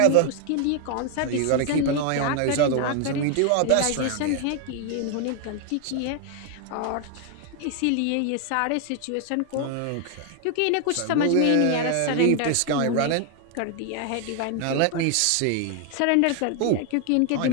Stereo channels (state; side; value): different; both; correlation 0.00